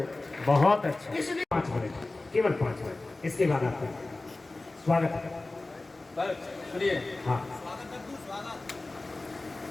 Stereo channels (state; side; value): quieter; right; 3.1 dB